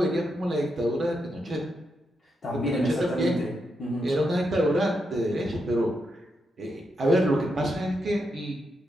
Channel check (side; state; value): both; normal; correlation 0.83